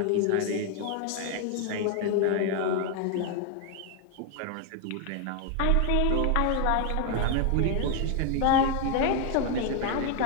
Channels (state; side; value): different; both; correlation 0.01